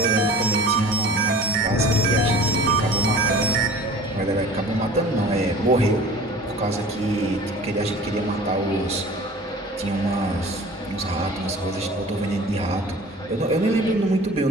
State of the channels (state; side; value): normal; both; correlation 0.43